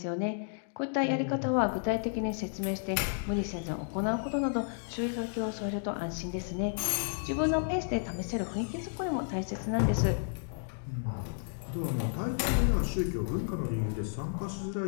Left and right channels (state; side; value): silent; right; digital silence